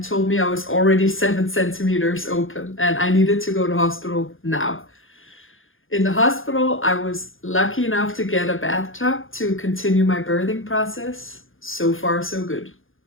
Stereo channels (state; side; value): late; right; 0.59 ms